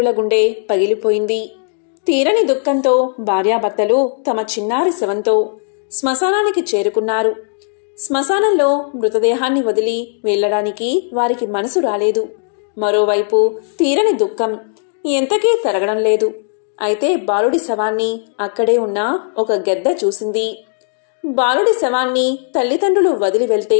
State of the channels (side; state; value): right; silent; digital silence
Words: గుండె పగిలిపోయింది. తీరని దుఃఖంతో భార్యాభర్తలు తమ చిన్నారి శవంతో శ్మశానానికి చేరుకున్నారు. శ్మశానంలో మృతదేహాన్ని వదిలి వెళ్లడానికి వారికి మనసు రాలేదు. మరోవైపు తీరని దుఃఖం ఎంతకీ తరగడం లేదు. అయితే బాలుడి శవాన్ని అక్కడే ఉన్న ఒక గెద్ద చూసింది. బాలుడి శవాన్ని తల్లిదండ్రులు వదిలి వెళ్తే